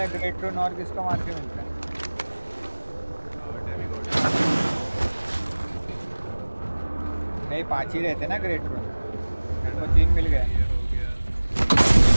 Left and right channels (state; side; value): inverted; both; correlation -1.00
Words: है ग्रेट रून, और किसको मार के मिलता है? नहीं 5 ही रहते ना ग्रेट रून, वो 3 मिल गए।